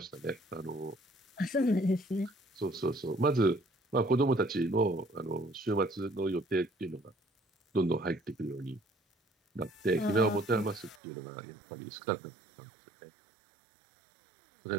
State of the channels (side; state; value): left; drops out; at 11.0 s